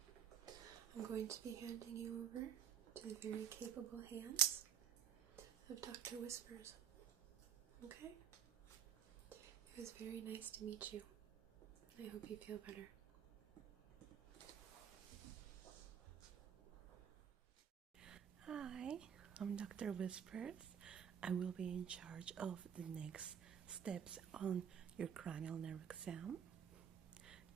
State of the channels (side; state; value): left; quieter; 8.3 dB